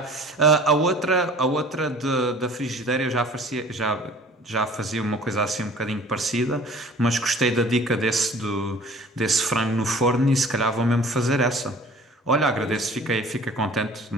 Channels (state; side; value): normal; both; correlation 0.48